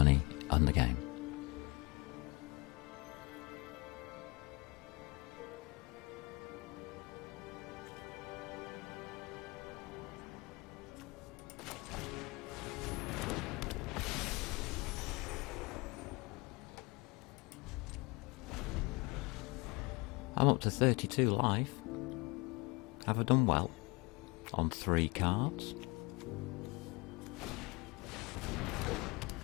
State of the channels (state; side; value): quieter; right; 26.3 dB